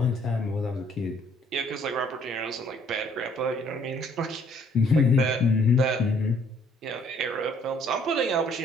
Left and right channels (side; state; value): both; normal; correlation 0.62